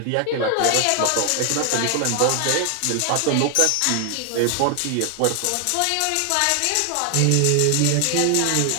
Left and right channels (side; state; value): both; different; correlation 0.00